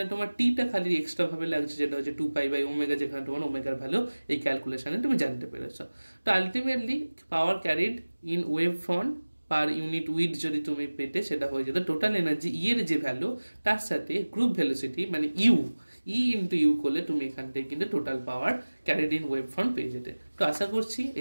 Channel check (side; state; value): both; inverted; correlation -1.00